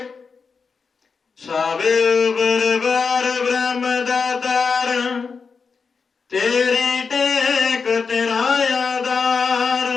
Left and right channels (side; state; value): right; quieter; 5.2 dB